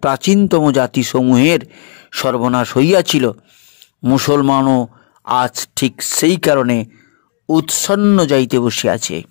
প্রাচীনতম জাতিসমূহের সর্বনাশ হইয়াছিল, মুসলমানও আজ ঠিক সেই কারণে উৎসন্ন যাইতে বসিয়াছে।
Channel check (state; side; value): quieter; right; 36.7 dB